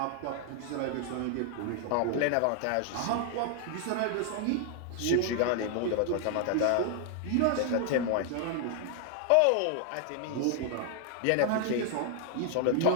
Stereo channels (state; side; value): different; both; correlation 0.00